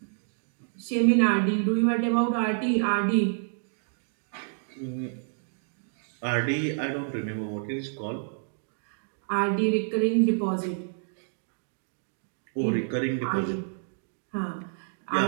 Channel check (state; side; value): silent; left; digital silence